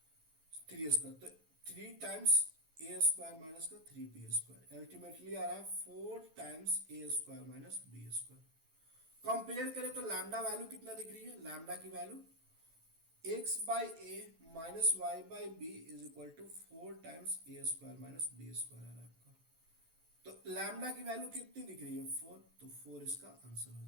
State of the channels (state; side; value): late; left; 13 ms